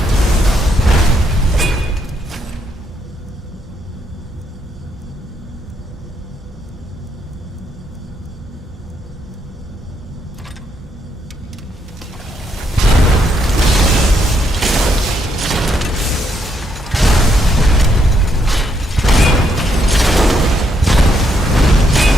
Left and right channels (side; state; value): both; normal; correlation 0.75